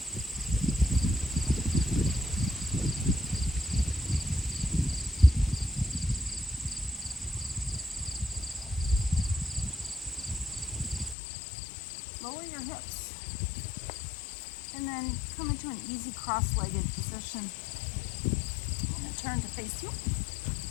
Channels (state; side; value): drops out; right; at 11.2 s